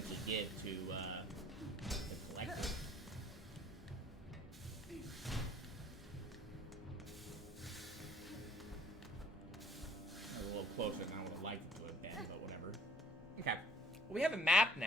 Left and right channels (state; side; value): normal; both; correlation 0.56